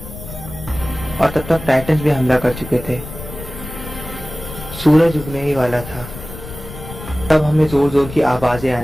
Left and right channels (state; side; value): noise; left; rumble, 12 dB below the sound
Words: और तब तक टाइटन्स भी हमला कर चुके थे। सूरज उगने ही वाला था। तब हमें जोर जोर की आवाजें